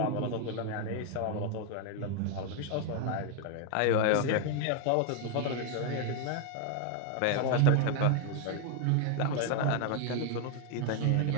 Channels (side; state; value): both; different; correlation 0.00